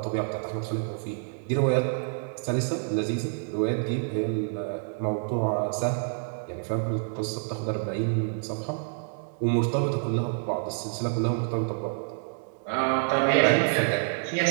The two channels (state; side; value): silent; left; 59 dB below the other